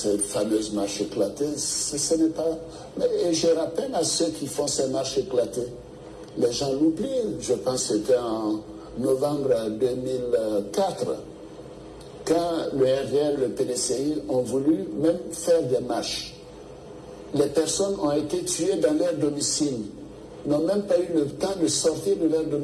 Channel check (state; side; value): identical; both; correlation 1.00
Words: fameuse marche éclatée. Ce n'est pas... Et je rappelle à ceux qui font ces marches éclatées, les gens l'oublient. Je pense que c'était en novembre 2004, quand le RDR, le PDCI ont voulu même faire des marches. Les personnes ont été tuées dans leur domicile, n'ont même pas eu le temps de sortir de leur